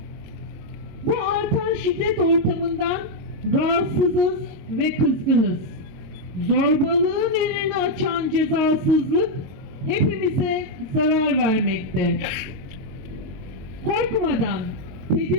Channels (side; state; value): left; late; 22 ms